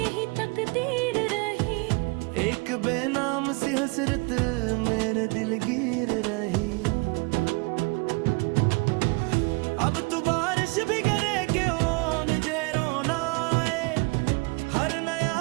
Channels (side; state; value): left; quieter; 29.2 dB